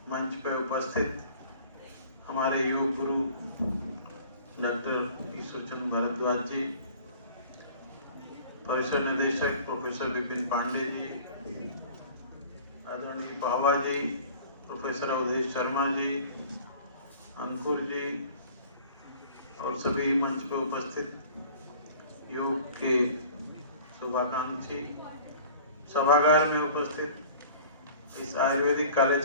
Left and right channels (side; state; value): both; inverted; correlation -0.47